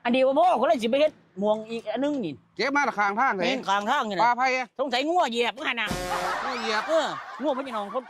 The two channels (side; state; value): both; identical; correlation 1.00